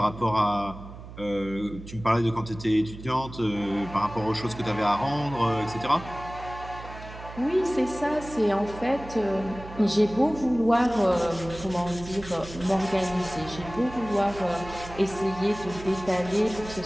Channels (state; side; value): noise; right; hum, 14 dB below the sound